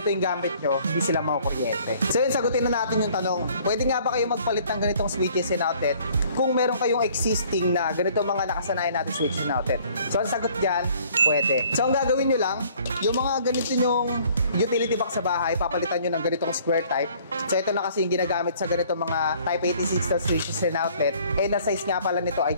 yung gamit nyo, hindi sila makukuryente. So yun, sagutin na natin yung tanong, pwede nga ba kayo magpalit ng ganitong switches and outlet kung meron kayong existing na ganito mga nakasanayan natin switches and outlet? So ang sagot dyan, pwede. So ang gagawin nyo lang, yung mga ganito nyong utility box sa bahay, papalitan nyo ng ganitong square type. So ito na kasi yung ginagamit sa ganitong mga Type 86 na switches and outlet. And na size nga pala nito ay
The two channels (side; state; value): both; inverted; correlation -0.57